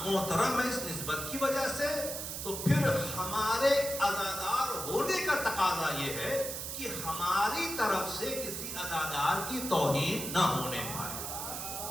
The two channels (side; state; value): right; noise; hiss, 5 dB below the sound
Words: محترم ہے اس نسبت کی وجہ سے، تو پھر ہمارے عزادار ہونے کا تقاضا یہ ہے کہ ہماری طرف سے کسی عزادار کی توہین نہ ہونے پائے.